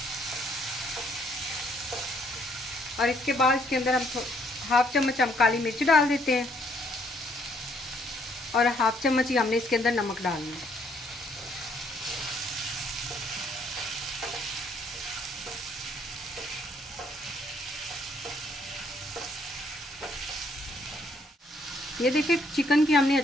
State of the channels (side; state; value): both; normal; correlation 0.68